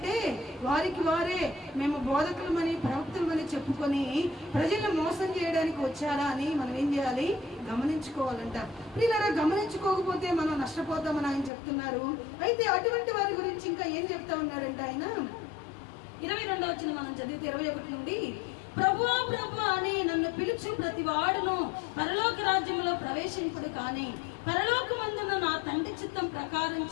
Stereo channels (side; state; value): right; drops out; at 11.5 s